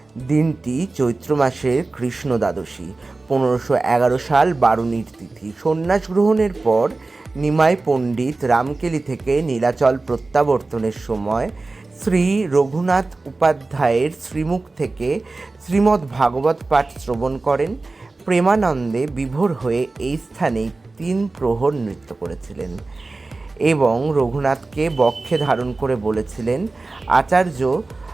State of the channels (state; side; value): quieter; left; 3.4 dB